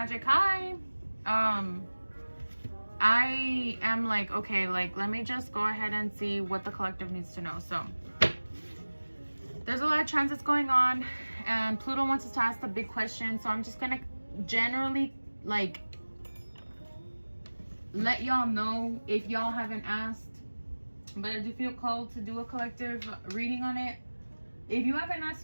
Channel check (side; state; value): both; inverted; correlation -1.00